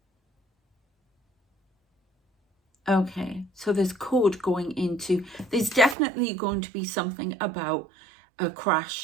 Okay, so there's code going into, there's definitely going to be something about a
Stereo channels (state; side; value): drops out; left; at 6.0 s